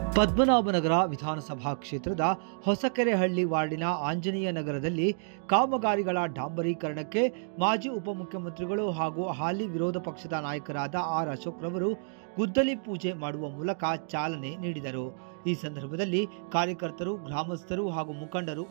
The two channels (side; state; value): left; silent; digital silence